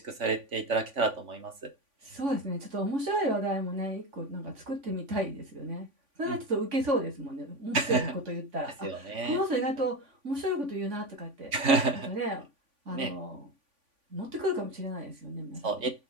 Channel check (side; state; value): left; late; 3.5 ms